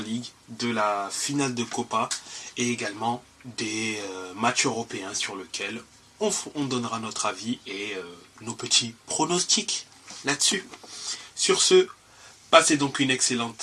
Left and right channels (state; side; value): identical; both; correlation 1.00